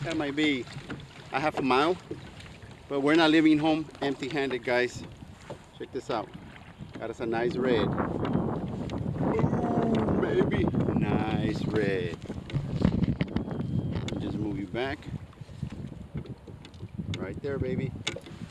That might be a half a mile. But we're not leaving home empty-handed, guys. Check this out. Got us a nice red. Ooh, baby. Nice red. Just move you back. Right there, baby.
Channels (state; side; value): identical; both; correlation 1.00